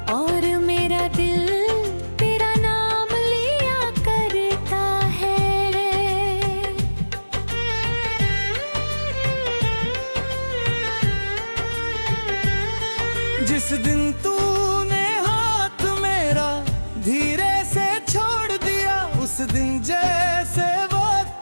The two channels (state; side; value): inverted; both; correlation -1.00